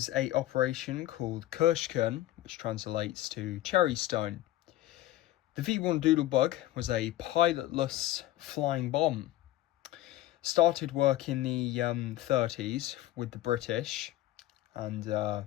a operation called Kirschkern, which translates to Cherry Stone. The V-1 Doodlebug was a pilotless flying bomb. Started work in the 30s with the British, and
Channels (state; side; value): quieter; right; 14.8 dB